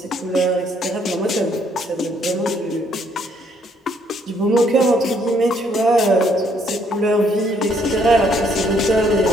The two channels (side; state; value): both; normal; correlation 0.68